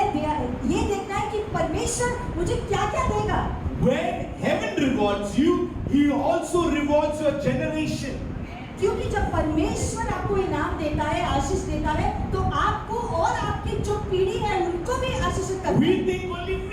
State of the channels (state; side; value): identical; both; correlation 1.00